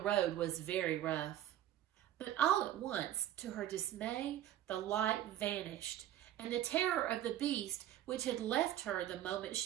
was very rough. But all at once, to her dismay, the light vanished, and the terror of the beast, which had left her the moment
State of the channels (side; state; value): left; quieter; 12.2 dB